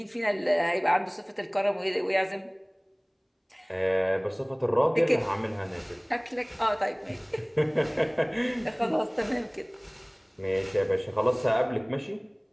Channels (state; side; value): identical; both; correlation 1.00